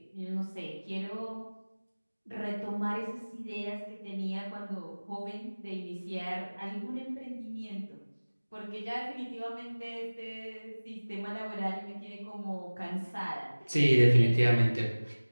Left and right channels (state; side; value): inverted; both; correlation -1.00